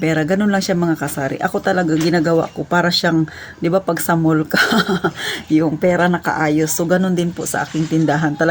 Ganun lang siya mga kasari. Ako talaga ginagawa ko para siyang, 'di ba pag sa mall ka, yung pera nakaayos. So, ganun din po sa aking tindahan.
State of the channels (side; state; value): both; identical; correlation 1.00